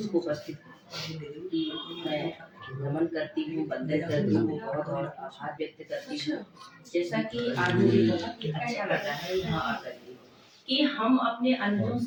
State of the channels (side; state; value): both; identical; correlation 1.00